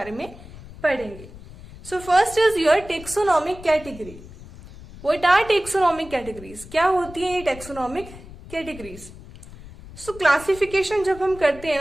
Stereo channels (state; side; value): noise; left; rumble, 17 dB below the sound